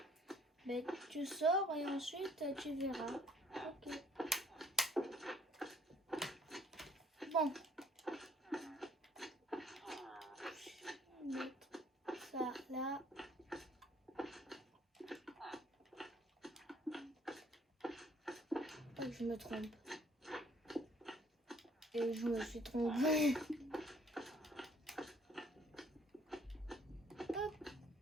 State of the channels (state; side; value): normal; both; correlation 0.60